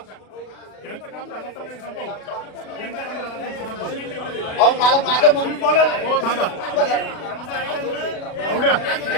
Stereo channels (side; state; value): right; late; 37 ms